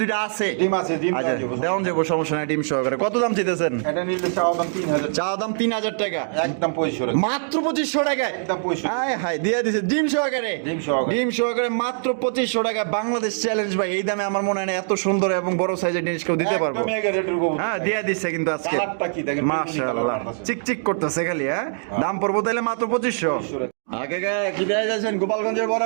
আছে। ডিম আছে, ডিম আচ্ছা দেওয়া যাবে। দেওয়ান যাবো, সমস্যা নাই, ডিম সহকারে। কত দাম চাইতেছেন? এটা নিলে চাওয়া দাম 3000, চা দাম 3000 টাকা, একদম 2500 টাকা। মাত্র 2500 টাকায়। একদম 2500। হায় হায়, দিয়ে দিছে ডিম সহকারে। ডিম সহকারে। ডিম সহকারে মাত্র 2500 টাকা। বাংলাদেশ চ্যালেঞ্জ ভাই, এই দামে আমার মনে হয় না এত সুন্দর এবং বড় সাইজের জিনিস কেউ দিতে পারবো। একদম এগারো রেটের কবুতর। হ্যাঁ, দিয়ে দিচ্ছে কিন্তু আজকে। কালারটা কি দেখেন, মাশাআল্লাহ, চিকচিক করতেছে খালি। হ্যাঁ, দাম পড়বো তাহলে মাত্র 2500। 2500 টাকা। আগে কি দেয়া যাচ্ছেন? গোপালগঞ্জের বড়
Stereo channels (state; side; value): silent; left; digital silence